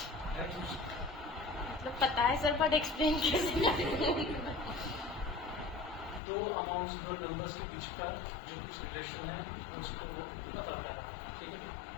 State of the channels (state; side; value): drops out; right; at 6.2 s